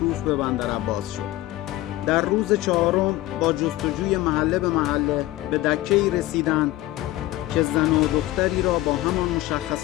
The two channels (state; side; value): quieter; right; 16.7 dB